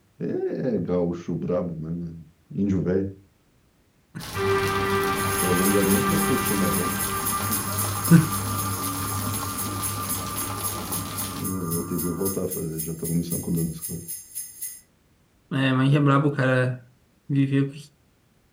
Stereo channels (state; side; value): identical; both; correlation 1.00